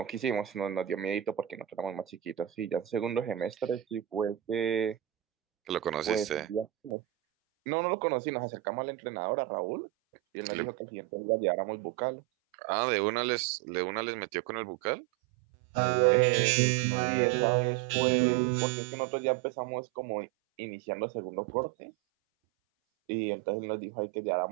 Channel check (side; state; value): left; drops out; at 6.9 s